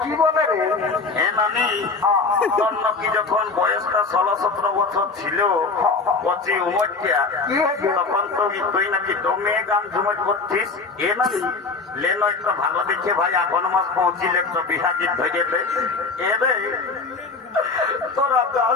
কি বলে রে? এ নানি তোর নাকি যখন বয়সটা 16-17 বছর ছিল কচি উমরটা কি হয়েছে? তখন তুই নাকি দমে গান ঝুমট করছিস। এ নানি লেনো একটু ভালো দেখে ভাই এখন মাস পৌঁছিলে একটু বিহা গীত ধরে দে। এ রে তোরা গান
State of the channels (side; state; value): right; quieter; 4.2 dB